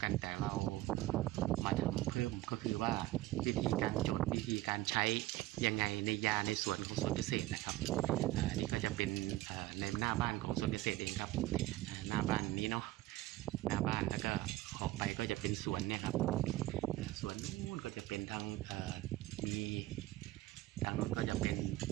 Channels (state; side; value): quieter; left; 17.2 dB